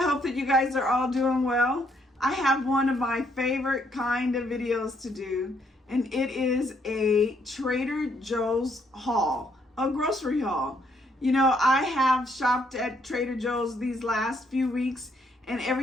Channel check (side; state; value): both; normal; correlation 0.71